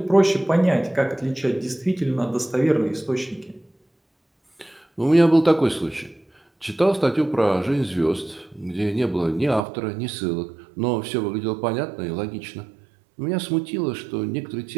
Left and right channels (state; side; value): drops out; left; at 9.6 s